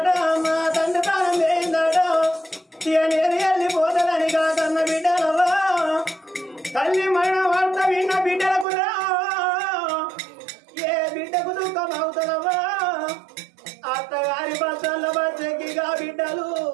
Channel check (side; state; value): left; drops out; at 8.7 s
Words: మా తండ్రి ప్రాణం వేయిందాడ నేను వెళ్ళిపోతుందని కాదన్న బిడ్డలవా తల్లి మరణ వార్త విన్న బిడ్డలకు రా ఏ బిడ్డకు దుఃఖం అవుతుందవా అత్తగారి బస్సల్లో బస్సెక్కిగా బిడ్డలు